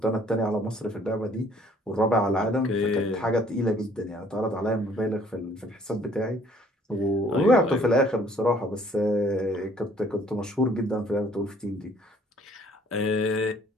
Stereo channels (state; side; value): normal; both; correlation 0.58